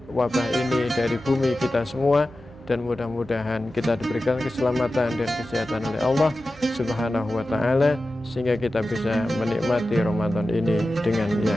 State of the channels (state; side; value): noise; right; hum, 23 dB below the sound